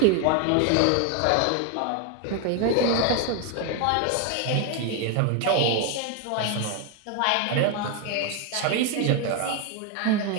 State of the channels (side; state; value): both; different; correlation 0.01